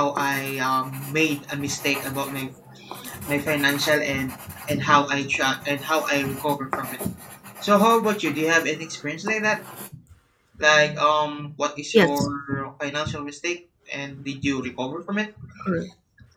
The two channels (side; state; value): both; identical; correlation 1.00